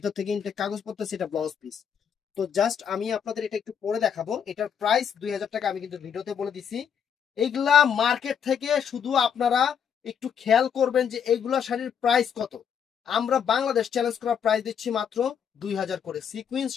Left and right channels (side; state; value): right; quieter; 7.8 dB